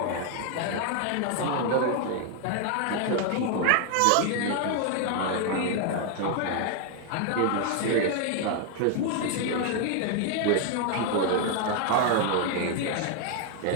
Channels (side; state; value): both; different; correlation 0.01